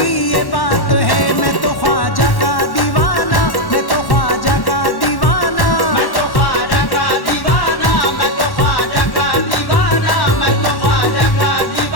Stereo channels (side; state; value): right; late; 1.1 ms